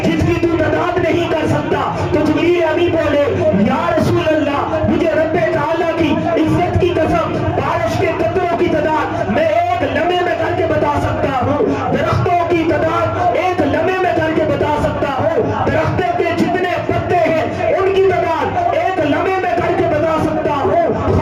جس کی تو تعداد نہیں کر سکتا؟ تو جبریل امی بولے، یا رسول اللہ مجھے رب تعالیٰ کی عزت کی قسم بارش کے قطروں کی تعداد میں ایک لمحے میں کر کے بتا سکتا ہوں، درختوں کی تعداد ایک لمحے میں کر کے بتا سکتا ہوں، درختوں کے جتنے پتے ہیں ان کی تعداد ایک لمحے میں کر کے بتا سکتا ہوں،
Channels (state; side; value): identical; both; correlation 1.00